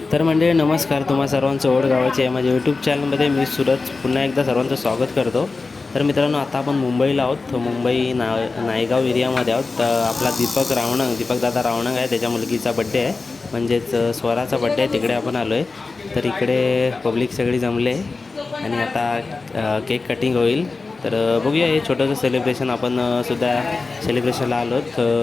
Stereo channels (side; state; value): right; quieter; 3.9 dB